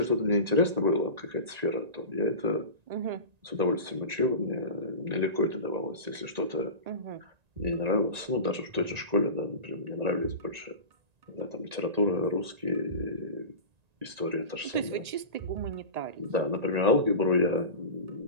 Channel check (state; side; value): late; left; 1.9 ms